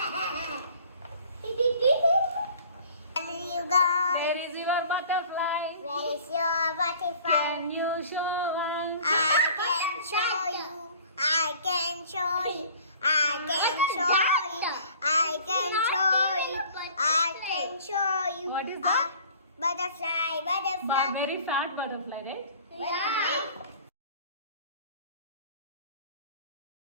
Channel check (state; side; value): inverted; both; correlation -0.49